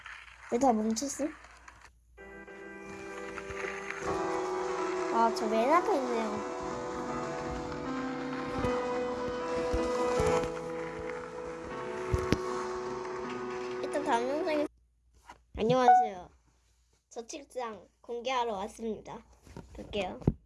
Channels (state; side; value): identical; both; correlation 1.00